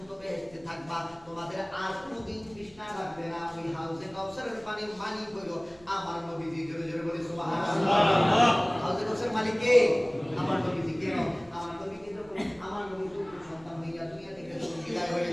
বেহেশতে থাকবা, তোমাদের আর কোনোদিন তৃষ্ণা লাগবে না। ওই হাউজে কাউসারের পানির মালিক হইল আমার নবীজি। জোরে জোরে বলি সুবহানাল্লাহ। হাউজে কাউসারের মালিক কে? আমার নবীজি। কেন? আমার নবীকে যখন আমার নবী সন্তান হইয়া দুনিয়া থেকে বিদায় হয়ে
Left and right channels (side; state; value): right; noise; hum, 27 dB below the sound